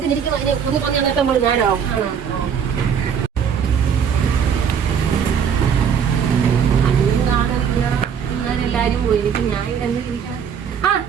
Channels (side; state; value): left; quieter; 7.5 dB